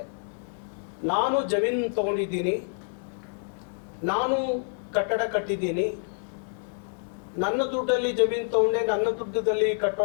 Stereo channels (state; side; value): silent; right; digital silence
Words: ನಾನು ಜಮೀನು ತಗೊಂಡಿದ್ದೀನಿ, ನಾನು ಕಟ್ಟಡ ಕಟ್ಟಿದ್ದೀನಿ, ನನ್ನ ದುಡ್ಡಲ್ಲಿ ಜಮೀನು ತಗೊಂಡೆ, ನನ್ನ ದುಡ್ಡದಲ್ಲಿ